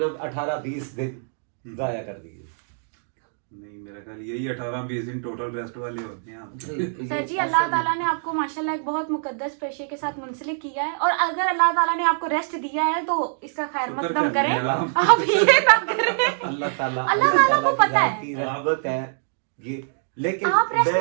18-20 दिन जाया कर दिए। नहीं मेरा ख्याल यही 18-20 दिन टोटल रेस्ट वाले होते हैं आपके। सर जी अल्लाह ताला ने आपको माशाल्लाह एक बहुत मुकद्दस पेशे के साथ मुंसलिक किया है, और अगर अल्लाह ताला ने आपको रेस्ट दिया है तो इसका खैर मकदम करें, आप ये ना करें। अल्लाह ताला को पता है, रहमत है ये, लेकिन आप रेस्ट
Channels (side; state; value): left; silent; digital silence